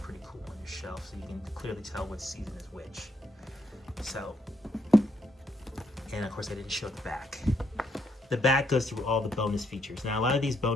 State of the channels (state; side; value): normal; both; correlation 0.75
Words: cool on your shelf, so you can clearly tell which season is which. So, and of course I didn't show the back. The back goes through all the bonus features. Now, a lot of these